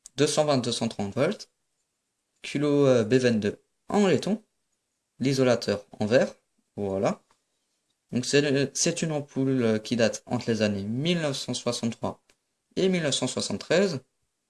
220-230 volts. Kilo B22 en laiton. L'isolateur en verre. Voilà. Donc c'est une ampoule qui date entre les années 1963 et 1973.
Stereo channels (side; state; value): both; identical; correlation 1.00